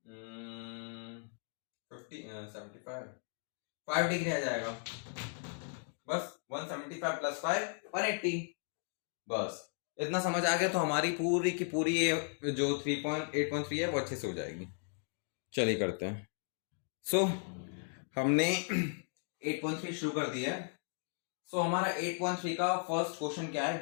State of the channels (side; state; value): right; silent; 54 dB below the other